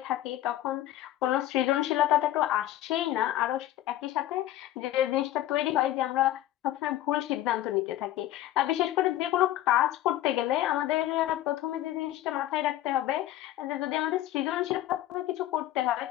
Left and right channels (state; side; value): quieter; right; 14.0 dB